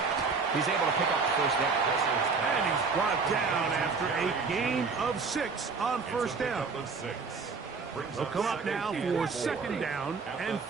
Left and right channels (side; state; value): left; quieter; 4.8 dB